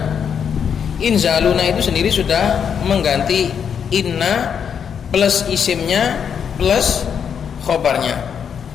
itu sendiri sudah mengganti inna plus isimnya plus khobarnya.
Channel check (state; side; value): quieter; right; 7.5 dB